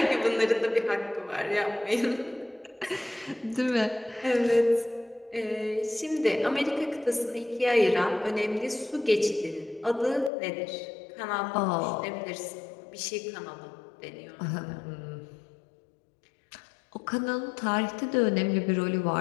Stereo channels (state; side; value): drops out; right; at 10.3 s